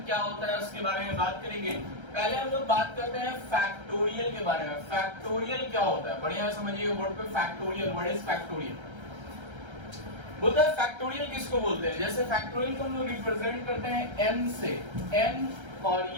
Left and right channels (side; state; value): left; late; 1.3 ms